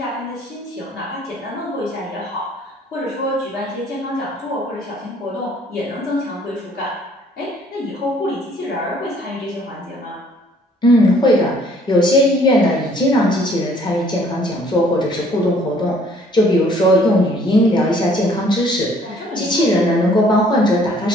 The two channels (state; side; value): normal; both; correlation 0.59